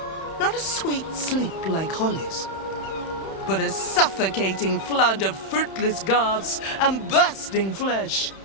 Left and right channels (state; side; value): late; right; 31 ms